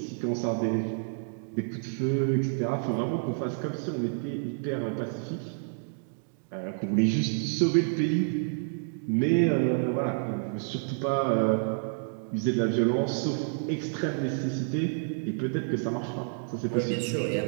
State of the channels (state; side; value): silent; left; digital silence